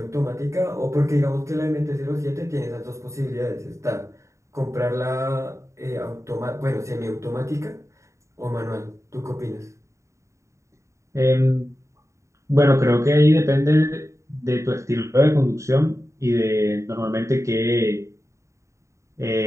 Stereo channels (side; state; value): left; late; 0.14 ms